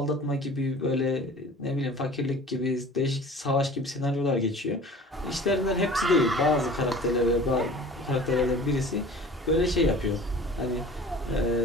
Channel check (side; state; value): both; normal; correlation 0.44